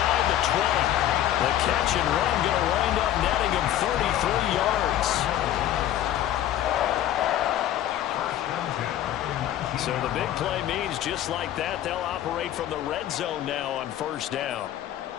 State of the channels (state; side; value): quieter; right; 12.1 dB